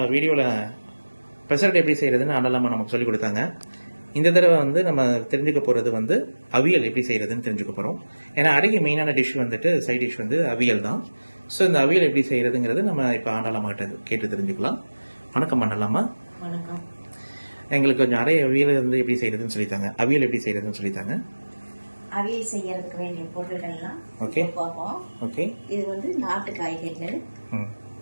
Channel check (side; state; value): both; inverted; correlation -1.00